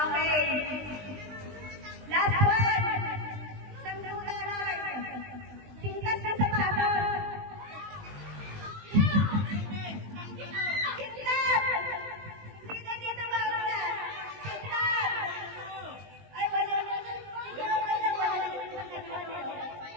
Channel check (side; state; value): left; late; 20 ms